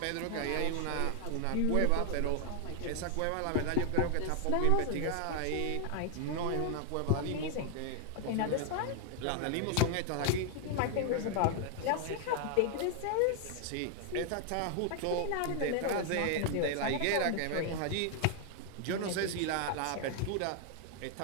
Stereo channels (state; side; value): different; both; correlation 0.00